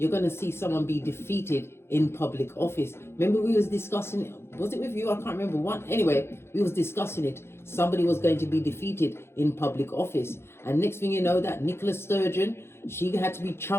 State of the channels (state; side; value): late; right; 0.12 ms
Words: going to see someone be defeated in public office. Remember we was discussing it, was it with you? I can't remember one. Anyway, we was discussing it. Somebody was going to be defeated in public office. And next thing you know, that Nicola Sturgeon, she had to be